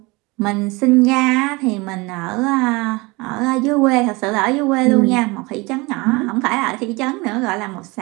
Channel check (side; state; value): left; quieter; 24.8 dB